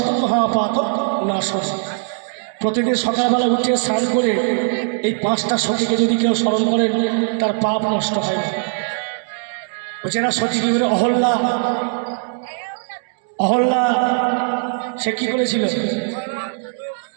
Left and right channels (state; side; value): silent; left; 66 dB below the other